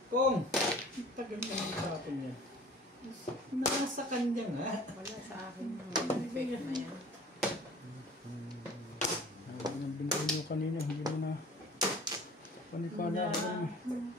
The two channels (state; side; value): normal; both; correlation 0.46